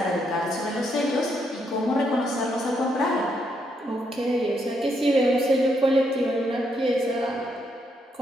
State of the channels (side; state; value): both; normal; correlation 0.77